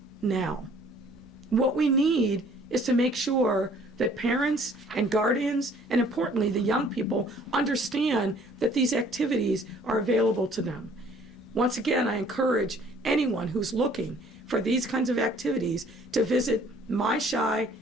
now. What we need is to make sure that parents and guardians, and importantly, the young people, understand that these activities are available to them. Once again, I encourage anyone who's looking for these kinds of activities to visit My Shy,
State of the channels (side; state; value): both; normal; correlation 0.57